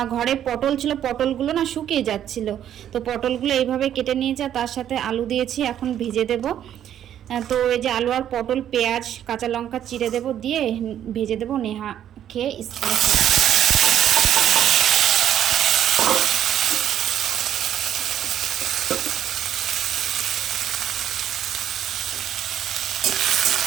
ঘরে পটল ছিল, পটলগুলো না শুকিয়ে যাচ্ছিল, তো পটলগুলো এইভাবে কেটে নিয়েছে, তার সাথে আলু দিয়েছি, এখন ভেজে দেব। তো এই যে আলু আর পটল, পেঁয়াজ, কাঁচা লঙ্কা চিড়ে দেব, দিয়ে ভেজে দেব, নেহা খেয়ে স্কুলে।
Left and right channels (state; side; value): quieter; left; 10.5 dB